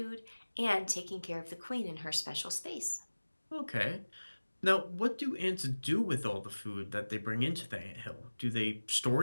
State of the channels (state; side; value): inverted; both; correlation -1.00